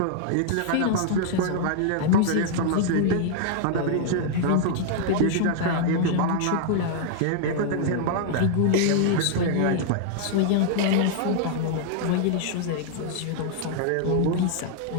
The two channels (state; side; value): different; both; correlation -0.01